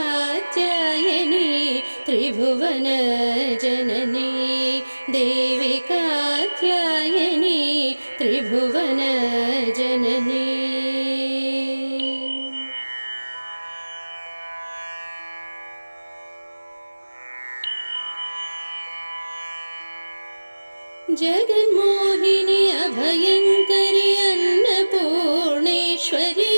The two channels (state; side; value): inverted; both; correlation -1.00